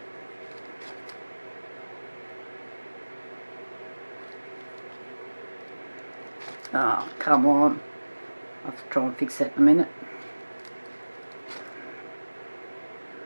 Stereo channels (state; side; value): inverted; both; correlation -1.00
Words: Oh, come on. I'll have to try and fix that in a minute.